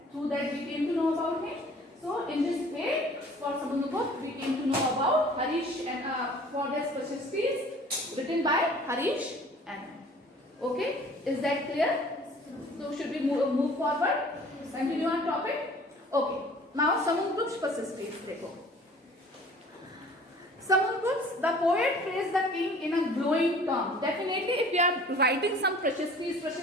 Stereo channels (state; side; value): normal; both; correlation 0.50